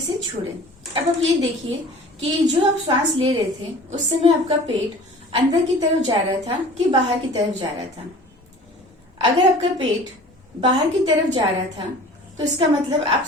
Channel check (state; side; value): normal; both; correlation 0.44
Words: से छोड़ें। अब आप ये देखिए कि जो आप सांस ले रहे थे उस समय आपका पेट अंदर की तरफ जा रहा था कि बाहर की तरफ जा रहा था। अगर आपका पेट बाहर की तरफ जा रहा था तो इसका मतलब आप